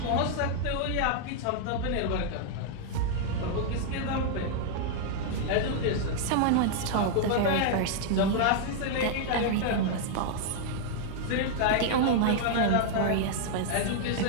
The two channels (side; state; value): both; different; correlation -0.01